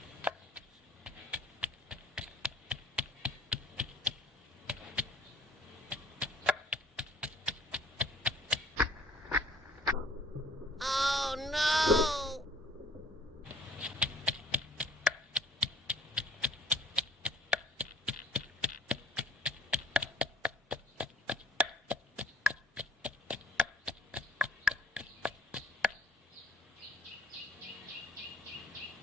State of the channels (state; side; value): normal; both; correlation 0.51